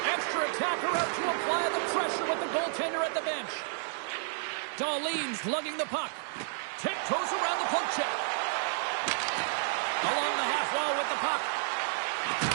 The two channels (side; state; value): left; silent; digital silence